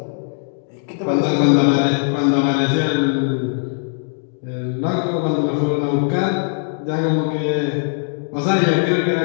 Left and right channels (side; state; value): right; silent; digital silence